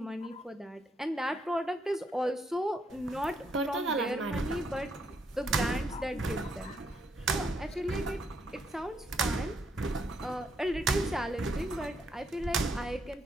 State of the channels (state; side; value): normal; both; correlation 0.74